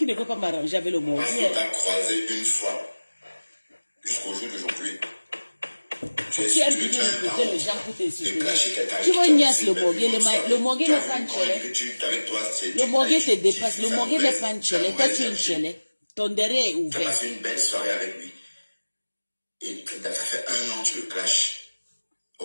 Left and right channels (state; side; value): inverted; both; correlation -1.00